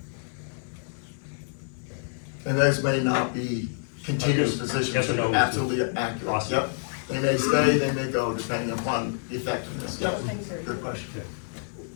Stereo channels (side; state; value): right; silent; digital silence